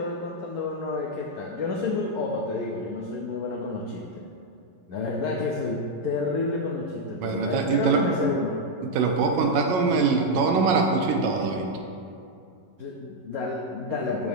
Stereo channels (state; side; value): late; left; 11 ms